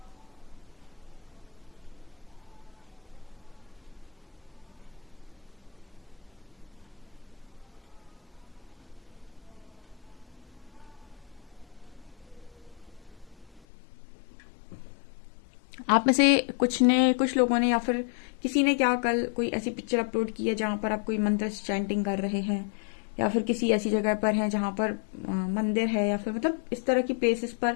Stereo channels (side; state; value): right; drops out; at 13.6 s